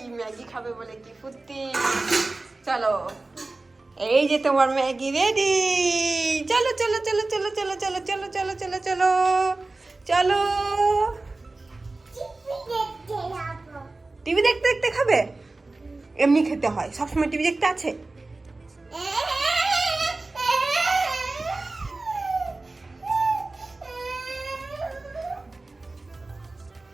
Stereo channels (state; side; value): quieter; left; 3.2 dB